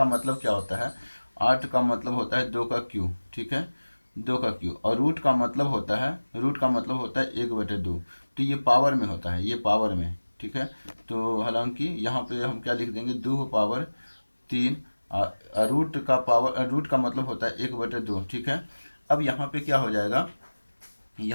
मतलब क्या होता है, 8 का मतलब होता है 2 का क्यूब। ठीक है, 2 का क्यूब, और रूट का मतलब होता है 1/2। तो ये पावर में होता है, ये पावर में। ठीक है, तो हालांकि यहाँ पे हम क्या लिख देंगे, 2 पावर 3, रूट का मतलब होता है 1/2। ठीक है, अब यहाँ पे क्या हो जाएगा,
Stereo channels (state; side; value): inverted; both; correlation -1.00